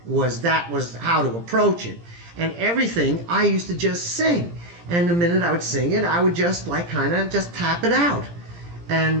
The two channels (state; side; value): late; left; 17 ms